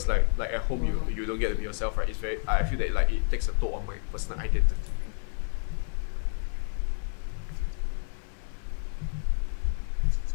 like at home you don't get to be yourself, right? I feel that like it takes a toll on my personal identity.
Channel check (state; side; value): silent; right; 58 dB below the other